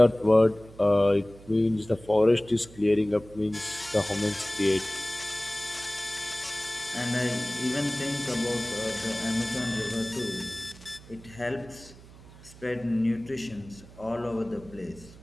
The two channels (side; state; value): right; noise; hum, 20 dB below the sound